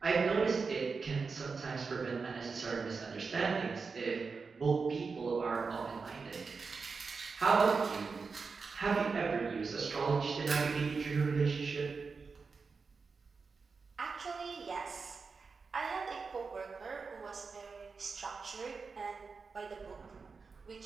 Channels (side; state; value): left; quieter; 4.8 dB